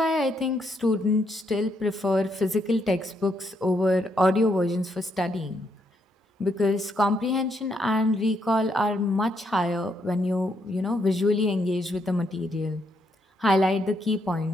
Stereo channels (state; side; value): normal; both; correlation 0.76